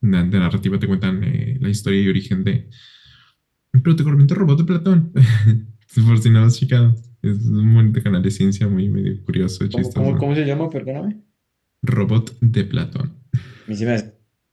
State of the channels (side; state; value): both; identical; correlation 1.00